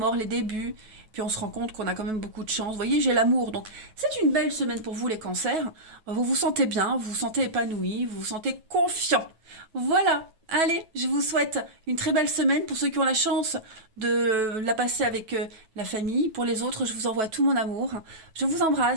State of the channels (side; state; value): left; late; 9.2 ms